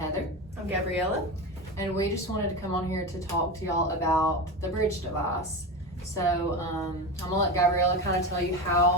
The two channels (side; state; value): both; normal; correlation 0.22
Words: I'm Gabriella. and we just wanted to come on here to talk to y'all about the bridge device. So I'm gonna let Gabriella kind of tell you